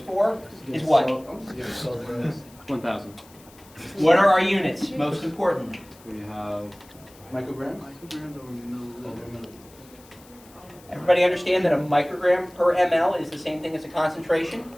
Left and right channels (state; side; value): noise; left; hiss, 25 dB below the sound